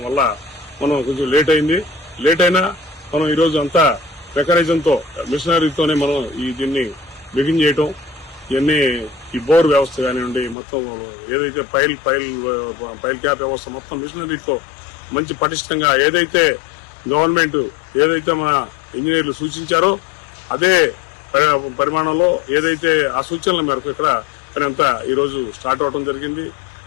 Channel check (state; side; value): drops out; right; at 10.6 s